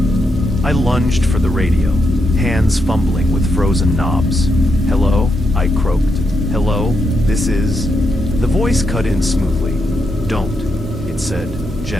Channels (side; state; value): both; normal; correlation 0.82